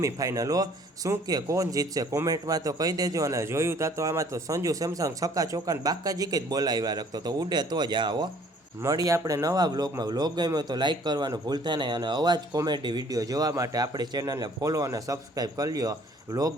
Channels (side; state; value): both; normal; correlation 0.57